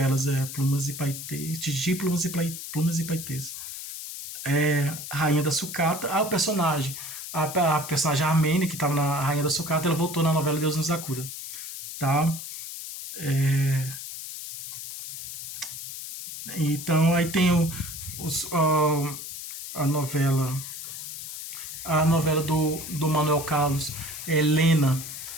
Plumas e Paetês, Tititi, Plumas e Paetês. Rainha da Sucata, o personagem. A personagem armênia que estava na Rainha da Sucata, ela voltou na novela Deus nos acuda. Tá? Então aí tem a novela. A novela do Manuel Carlos, Helena.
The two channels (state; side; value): noise; left; hiss, 9 dB below the sound